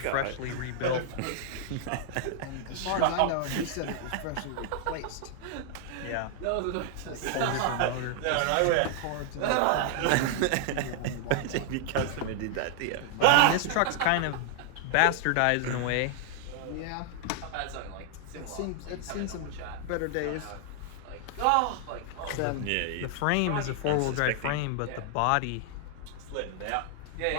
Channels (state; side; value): different; both; correlation 0.00